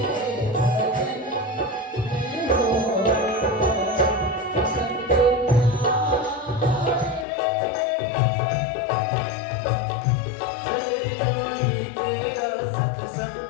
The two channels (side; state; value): right; drops out; at 7.2 s